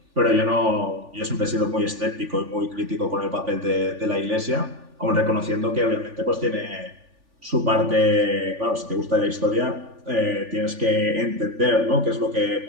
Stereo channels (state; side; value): late; left; 3.5 ms